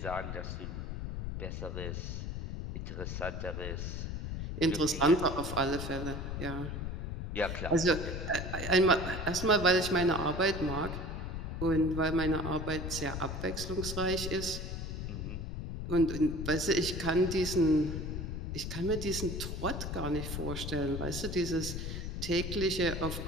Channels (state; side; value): noise; left; rumble, 5 dB below the sound